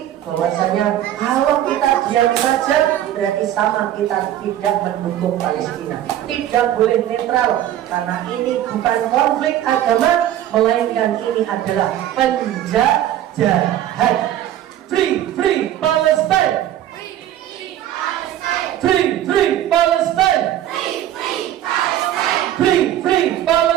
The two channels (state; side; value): quieter; left; 12.0 dB